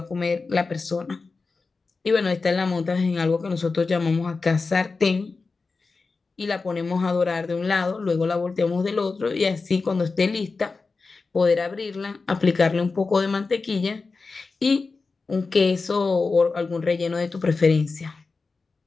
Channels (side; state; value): right; quieter; 4.2 dB